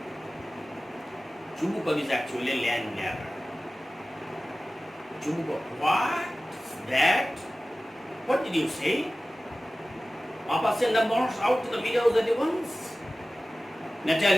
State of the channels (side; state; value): both; normal; correlation 0.96